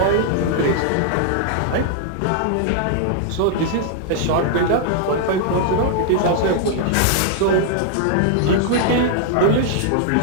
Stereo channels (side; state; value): both; different; correlation -0.01